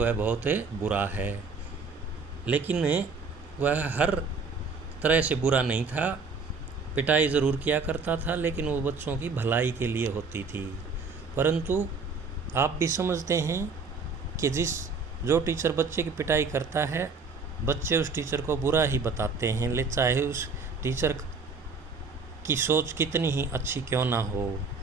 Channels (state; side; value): quieter; left; 4.5 dB